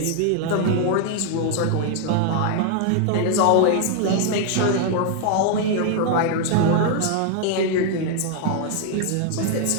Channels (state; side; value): different; both; correlation 0.00